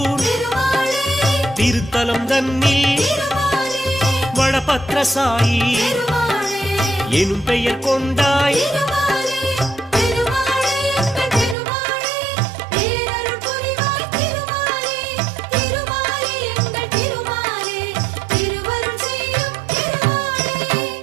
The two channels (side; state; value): left; drops out; at 11.6 s